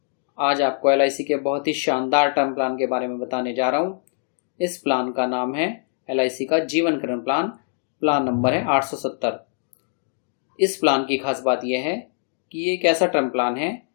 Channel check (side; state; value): right; silent; digital silence